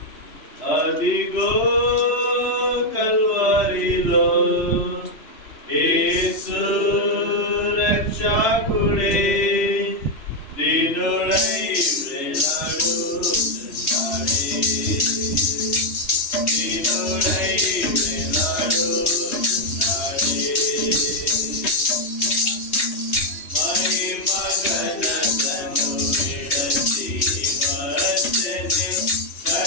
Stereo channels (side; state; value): right; late; 3.0 ms